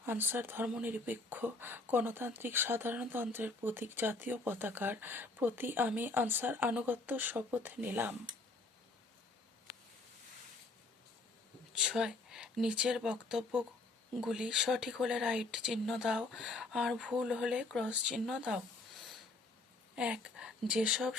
আনসার ধর্মনিরপেক্ষ গণতান্ত্রিক সাধারণতন্ত্রের প্রতীক জাতীয় পতাকার প্রতি আমি আনসার আনুগত্য শপথ নিলাম। 6 নিচের বক্তব্যগুলি সঠিক হলে রাইট চিহ্ন দাও আর ভুল হলে ক্রস চিহ্ন দাও। 1 যেসব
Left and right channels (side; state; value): right; quieter; 3.3 dB